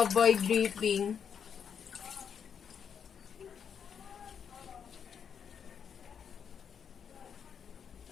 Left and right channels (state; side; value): quieter; right; 7.4 dB